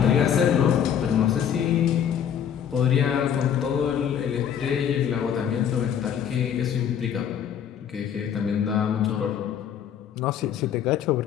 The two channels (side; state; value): right; quieter; 8.8 dB